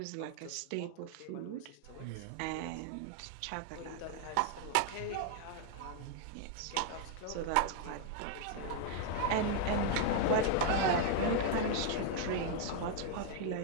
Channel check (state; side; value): different; both; correlation 0.00